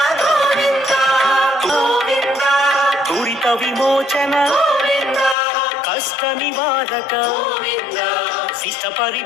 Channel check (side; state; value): right; drops out; at 5.4 s